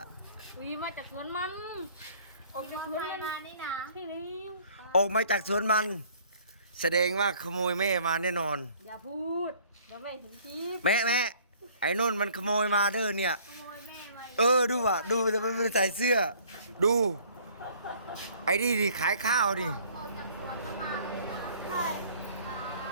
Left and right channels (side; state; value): both; inverted; correlation -0.56